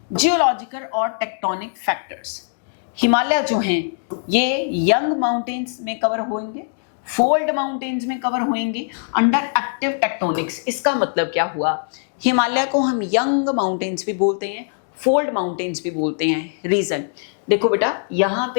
जियोलॉजिकल और टेक्टोनिक फैक्टर्स। हिमालय जो हैं ये यंग माउंटेन्स में कवर होंगे, फोल्ड माउंटेन्स में कवर होंगे अंडर एक्टिव टेक्टोनिक्स। इसका मतलब क्या हुआ? हिमालय को हम यंग माउंटेन्स भी बोलते हैं, फोल्ड माउंटेन्स भी बोलते हैं। रीजन देखो बेटा, यहाँ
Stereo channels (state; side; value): silent; right; digital silence